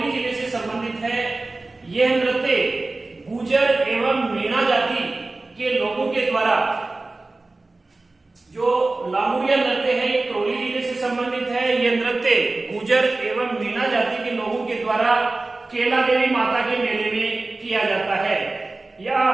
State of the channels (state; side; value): quieter; left; 3.2 dB